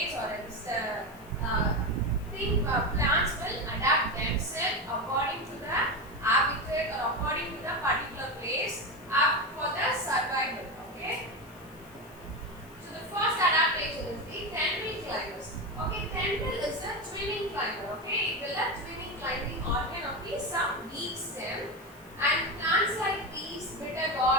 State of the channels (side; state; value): left; noise; hiss, 25 dB below the sound